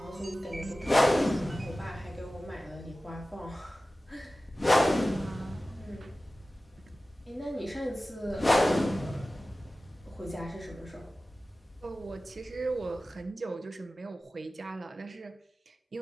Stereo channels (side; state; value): both; normal; correlation 0.96